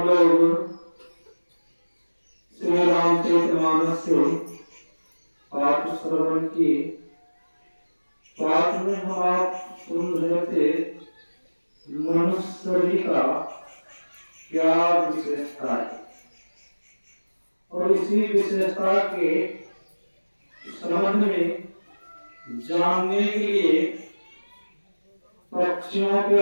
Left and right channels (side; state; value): both; inverted; correlation -1.00